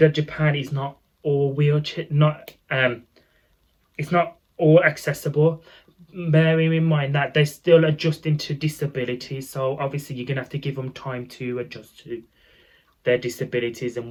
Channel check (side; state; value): both; identical; correlation 1.00